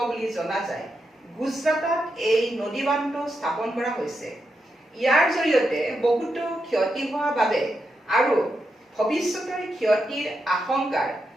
বুলি জনা যায়। গুজৰাটত এই নদী বান্ধটো স্থাপন কৰা হৈছে। ইয়াৰ জৰিয়তে বহুতো ক্ষতি হোৱা বাবে আৰু ভৱিষ্যতৰ ক্ষতিৰ আশংকাৰ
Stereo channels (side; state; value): both; normal; correlation 0.85